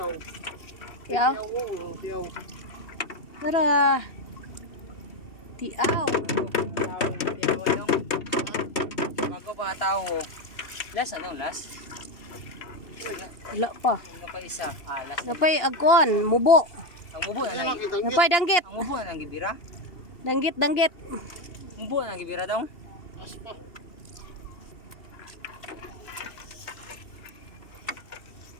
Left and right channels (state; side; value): late; right; 2.8 ms